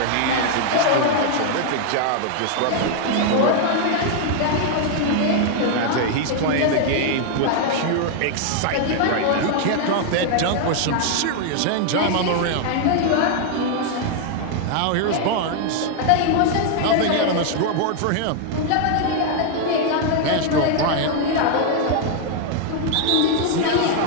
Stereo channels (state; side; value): different; both; correlation 0.00